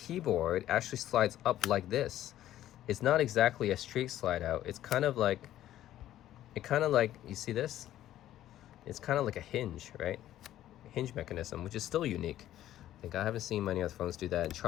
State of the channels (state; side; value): quieter; right; 12.9 dB